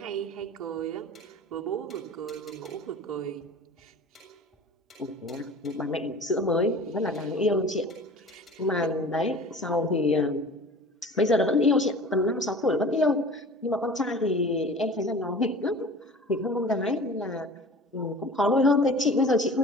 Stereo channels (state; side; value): normal; both; correlation 0.41